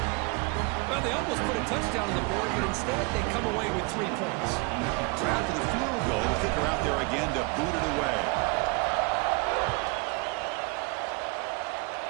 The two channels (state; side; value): quieter; left; 29.2 dB